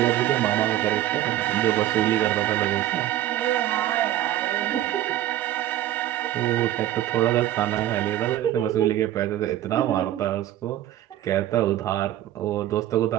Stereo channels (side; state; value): left; quieter; 13.3 dB